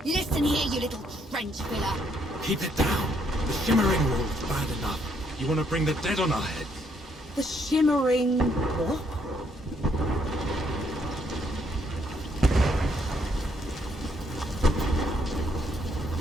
Listen here, you little trench filler. Keep it down. The shimmering wall's bad enough. You want to bring the dead on our heads? The shimmering... what?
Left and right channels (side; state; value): both; normal; correlation 0.71